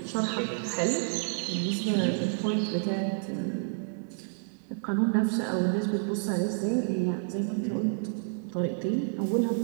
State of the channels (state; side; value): silent; left; digital silence